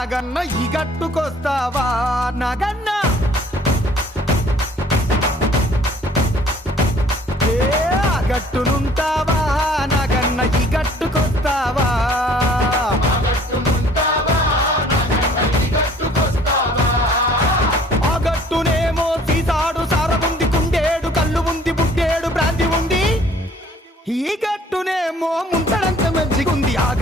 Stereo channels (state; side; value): normal; both; correlation 0.55